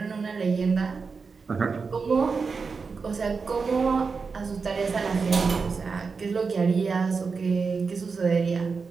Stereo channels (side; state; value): left; quieter; 4.9 dB